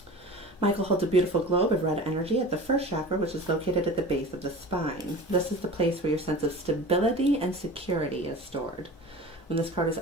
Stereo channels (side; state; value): both; normal; correlation 0.36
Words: Michael holds a beautiful globe of red energy at the first chakra, which is located at the base of the spine. This is the place where your sense of stability and security is stored. When this card is